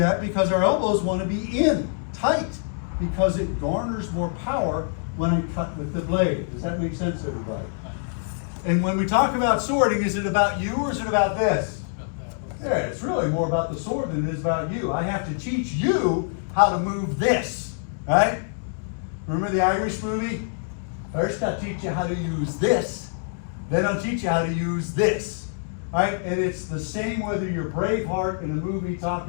because our elbows want to be in, tight, because it garners more power when I cut with the blade. Does that make sense, everybody? And when we talk about swording, is it about you or is it about this? Yeah, it's really more about the sword than it is about you. I have to teach you how to move this, right? Remember the Irish movie? First I'll teach you how to use this, then I'll teach you how to use this, right? And it's the same whether you're Braveheart in a movie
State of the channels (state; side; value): silent; right; digital silence